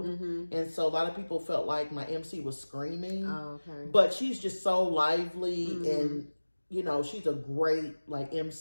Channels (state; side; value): inverted; both; correlation -1.00